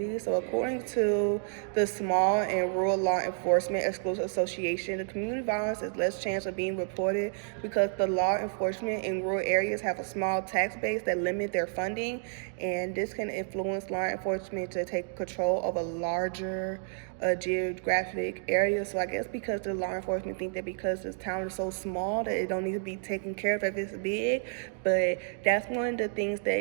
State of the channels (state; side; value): silent; left; 58 dB below the other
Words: So according to the Small and Rural Law Enforcement Exclusive Association, the community violence has less chance of being reported because the law enforcement in rural areas have a small tax base that limit their funding, and this can influence law enforcement to take control of a larger geographic area. So I guess because the law enforcement think that because this town is so small that it don't need to be taken care of if it's big, but that's one of the things